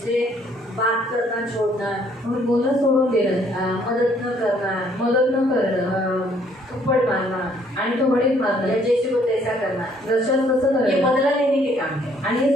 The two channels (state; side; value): normal; both; correlation 0.64